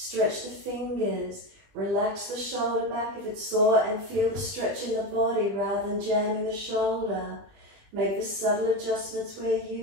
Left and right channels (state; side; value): late; left; 20 ms